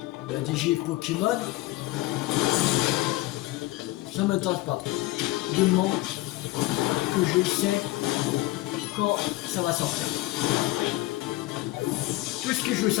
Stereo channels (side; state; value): right; quieter; 18.9 dB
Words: la DG Pokémon, ça m'intéresse pas trop. Du moment que je sais quand ça va sortir. Tout ce que je veux